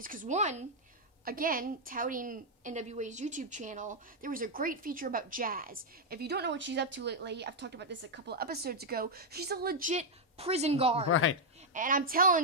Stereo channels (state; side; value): normal; both; correlation -0.01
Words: because, one, again, touting NWA's YouTube channel, there was a great feature about Jazz. If you don't know what she's up to lately, I've talked about this a couple of episodes ago, she's a legit prison guard. And I'm